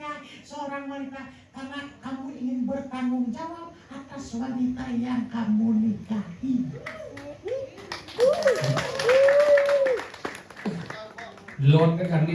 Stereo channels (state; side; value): identical; both; correlation 1.00